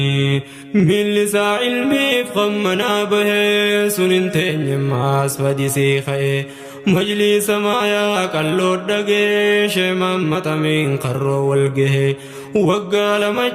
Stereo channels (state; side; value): identical; both; correlation 1.00